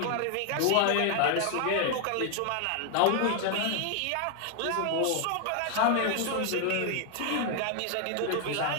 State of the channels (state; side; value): different; both; correlation 0.00